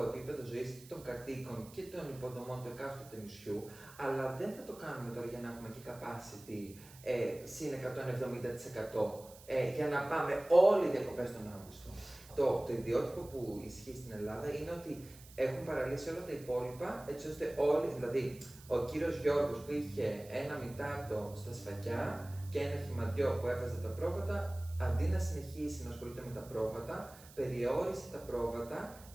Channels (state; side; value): noise; right; hiss, 20 dB below the sound